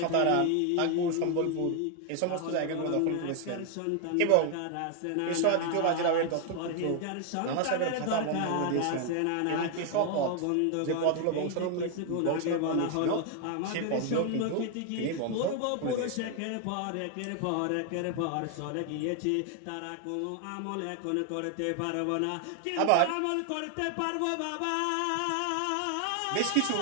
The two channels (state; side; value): different; both; correlation 0.00